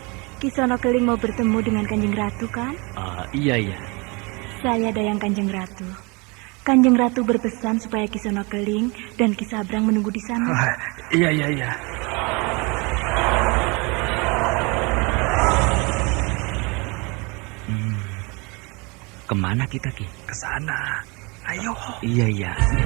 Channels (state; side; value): quieter; left; 28.7 dB